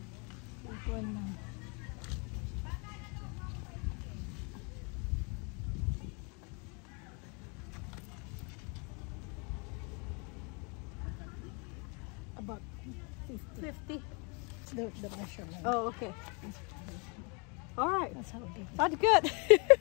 This one now. About 50. The measurement. Oh, okay. All right. That's how big. That's good.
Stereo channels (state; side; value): quieter; right; 33.5 dB